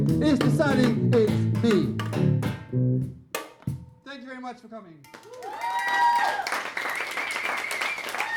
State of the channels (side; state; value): both; identical; correlation 1.00